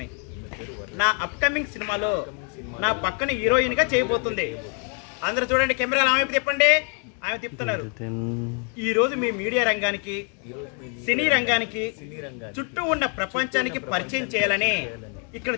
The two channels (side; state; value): right; quieter; 37.0 dB